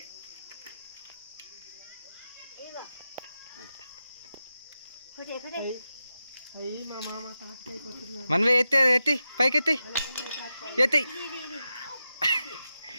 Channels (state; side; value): inverted; both; correlation -0.90